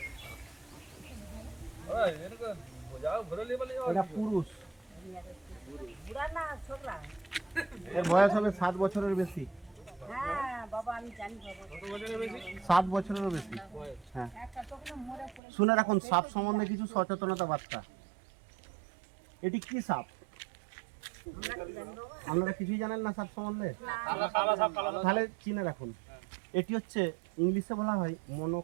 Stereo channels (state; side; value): drops out; left; at 15.4 s